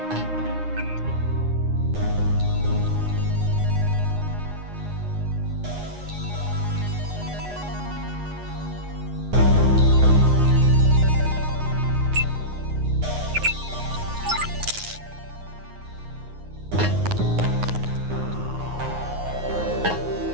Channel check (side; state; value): left; late; 9.6 ms